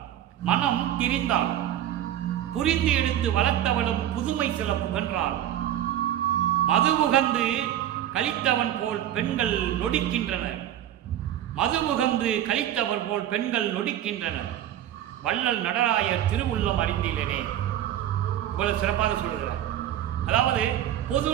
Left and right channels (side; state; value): left; quieter; 11.8 dB